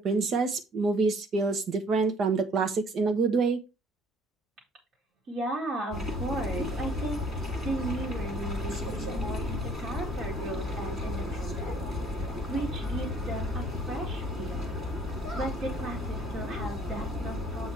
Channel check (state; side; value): normal; both; correlation 0.58